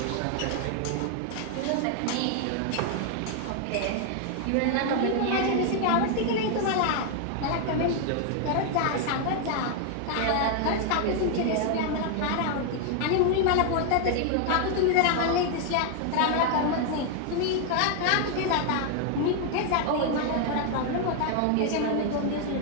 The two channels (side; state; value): both; different; correlation 0.00